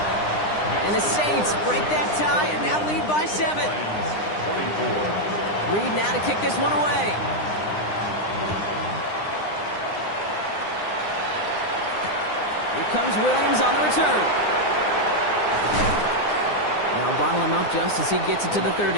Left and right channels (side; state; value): right; late; 9.8 ms